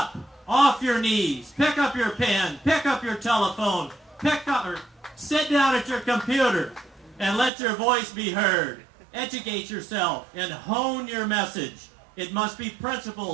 off your knees, pick up your pen, pick up your telephone, sit down at your computer, and let your voice be heard. Educate yourself and hone your message. It must be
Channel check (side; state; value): left; drops out; at 7.5 s